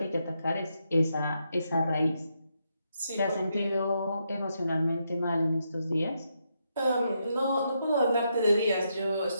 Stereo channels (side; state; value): both; inverted; correlation -0.80